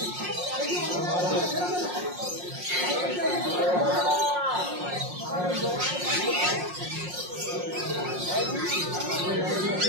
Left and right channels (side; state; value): left; late; 5.6 ms